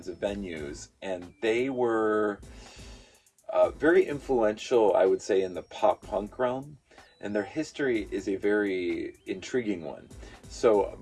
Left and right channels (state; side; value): identical; both; correlation 1.00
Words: of venues. And they were very influential, I would say, in the pop punk realm. And their history is a very intriguing one. So